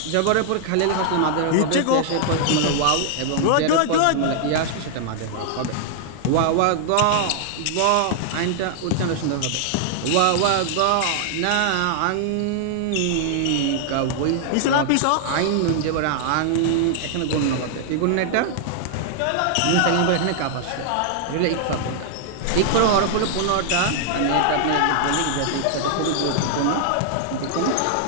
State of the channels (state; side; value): different; both; correlation -0.01